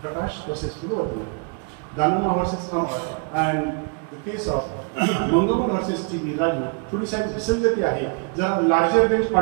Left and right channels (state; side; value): quieter; left; 37.5 dB